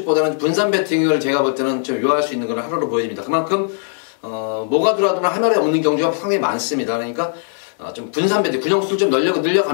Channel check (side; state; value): right; silent; digital silence